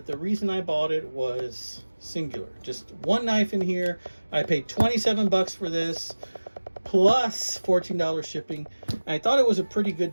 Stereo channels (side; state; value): both; inverted; correlation -1.00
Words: the reason I bought it was singular. Just one knife in here. I paid 27 bucks for this, plus $14 shipping. I thought it was a pretty good